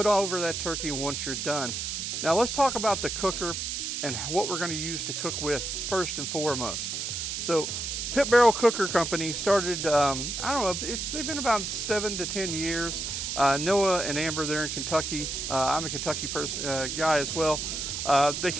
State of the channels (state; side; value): noise; right; hiss, 3 dB below the sound